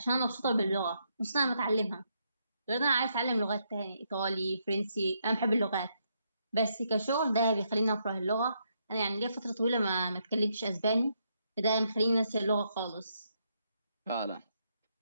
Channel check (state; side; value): inverted; both; correlation -0.77